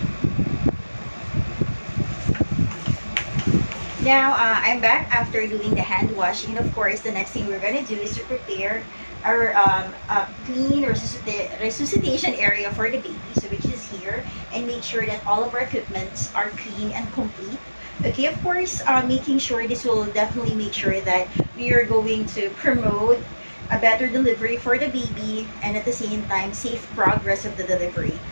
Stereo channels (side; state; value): both; inverted; correlation -1.00